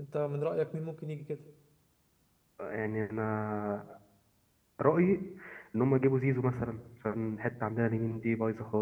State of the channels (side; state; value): both; identical; correlation 1.00